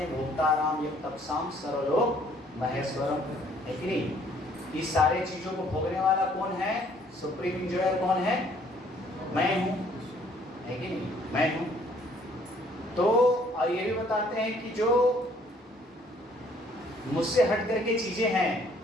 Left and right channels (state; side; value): normal; both; correlation 0.61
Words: भोक्ता राम यज्ञ तपसाम सर्वलोक महेश्वरम, है कि नहीं? इस सारे चीज़ों को भोगने वाला कौन है? सुप्रीम इंजॉयर कौन है? मैं हूँ, है कि नहीं? मैं हूँ। तो और ये भी बताते हैं कि जो मुझसे हट करके चीजें हैं